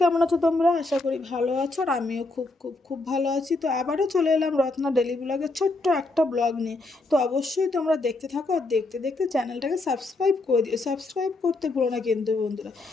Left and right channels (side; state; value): right; quieter; 3.1 dB